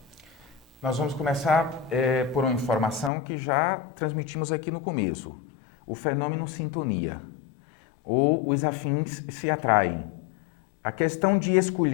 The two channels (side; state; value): right; drops out; at 3.1 s